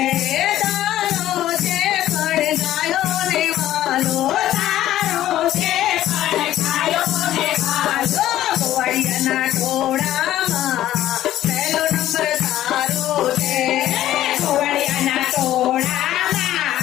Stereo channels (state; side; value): quieter; right; 13.2 dB